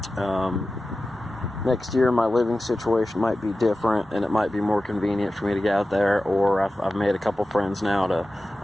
my living situation might be different, and it might be more convenient for me to get out there. Or I've made a couple friends now.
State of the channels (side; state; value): both; normal; correlation 0.94